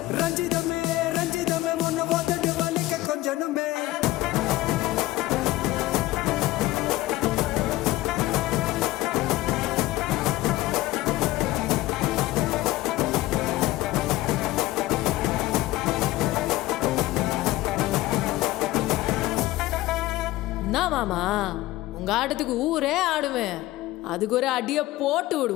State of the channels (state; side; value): quieter; right; 17.2 dB